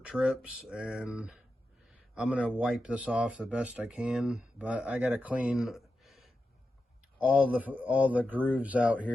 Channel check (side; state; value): both; normal; correlation 0.90